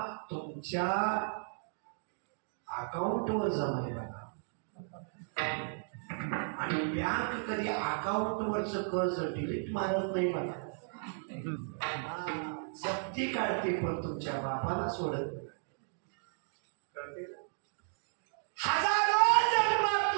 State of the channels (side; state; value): left; silent; digital silence